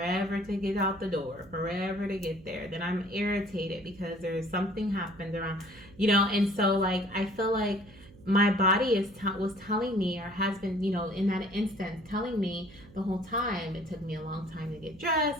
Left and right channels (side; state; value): right; noise; hum, 22 dB below the sound